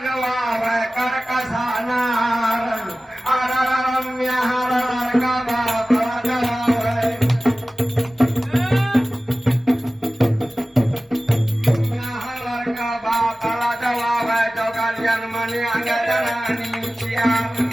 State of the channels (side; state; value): both; normal; correlation 0.96